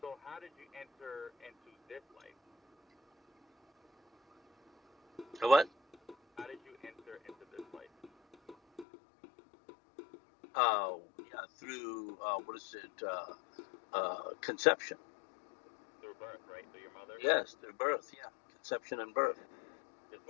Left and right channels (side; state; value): right; drops out; at 8.8 s